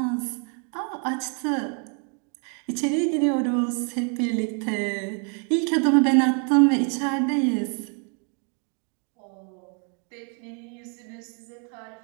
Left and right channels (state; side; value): quieter; left; 38.4 dB